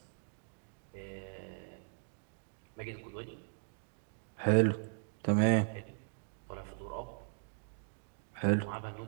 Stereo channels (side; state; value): left; silent; digital silence